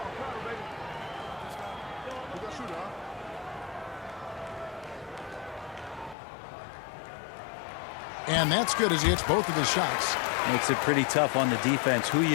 And that's good as he hits both of his shots. Makes it pretty tough on the defense. Who are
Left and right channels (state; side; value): drops out; right; at 6.2 s